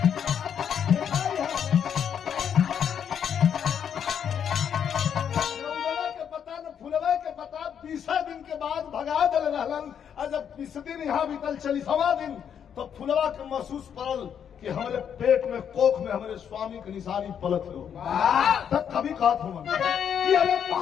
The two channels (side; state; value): right; quieter; 8.3 dB